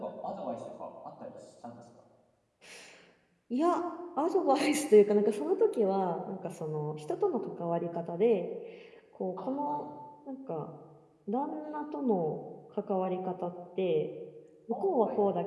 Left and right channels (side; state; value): both; identical; correlation 1.00